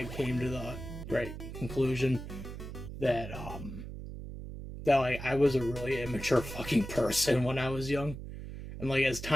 came to the right conclusion that, I was a really immature fucking person when I was young. And, like, as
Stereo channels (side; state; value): right; noise; hum, 9 dB below the sound